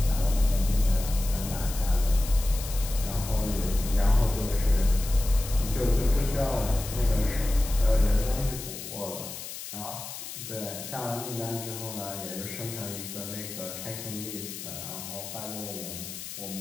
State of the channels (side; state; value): left; noise; hiss, 10 dB below the sound